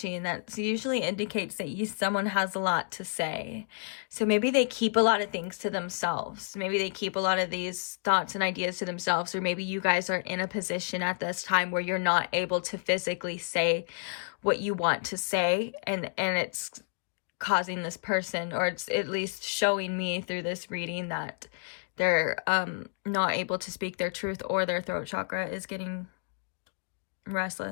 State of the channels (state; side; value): silent; right; digital silence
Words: and that usually indicates that someone has a lot to say. So maybe they keep a lot of things to themselves. Maybe they keep a lot of these thoughts and ideas to themselves, or maybe you guys are in a position at this time where you're not able to physically say what you want to say, and it's causing this person, or it's at least showing me through this reading, that they're not able to speak their truth, or their throat chakra is getting